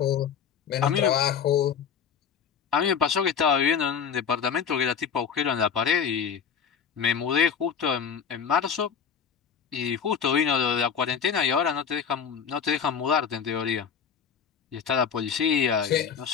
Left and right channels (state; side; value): quieter; right; 7.2 dB